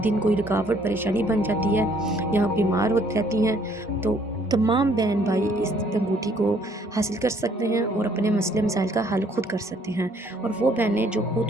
دن کوئی رکاوٹ پریشانی بن جاتی ہے یا بیمار ہو جاتی ہیں۔ تو تمام بہن بھائی اس انگوٹھی کو حاصل کر سکتے ہیں اور اپنے مسئلے مسائل کا حل خود کر سکتے ہیں۔ اور وہ بہنیں جو خود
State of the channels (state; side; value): normal; both; correlation 0.63